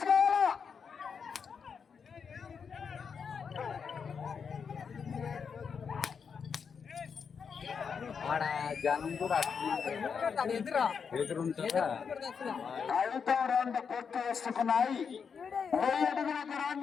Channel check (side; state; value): right; quieter; 6.3 dB